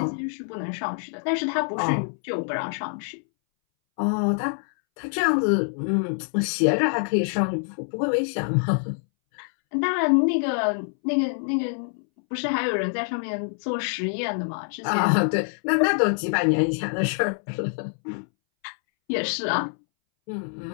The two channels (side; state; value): right; silent; 61 dB below the other